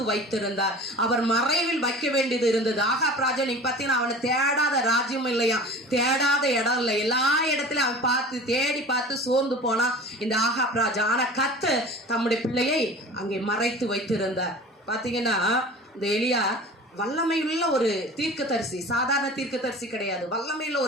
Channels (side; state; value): both; normal; correlation 0.39